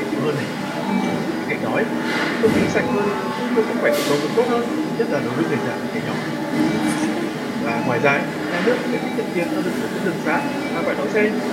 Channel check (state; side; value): identical; both; correlation 1.00